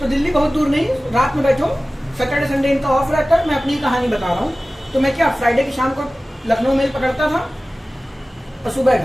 दिल्ली बहुत दूर नहीं, रात में बैठो, सैटरडे संडे इनका ऑफ रहता है। मैं अपनी कहानी बता रहा हूँ। तो मैं क्या फ्राइडे की शाम को लखनऊ मेल पकड़ता था और सुबह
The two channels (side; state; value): both; normal; correlation 0.97